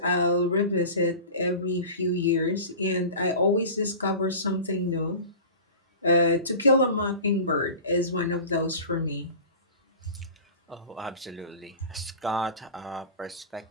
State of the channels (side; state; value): both; inverted; correlation -0.36